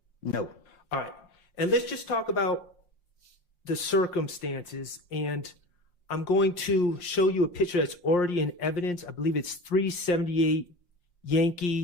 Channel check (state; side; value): late; right; 5.7 ms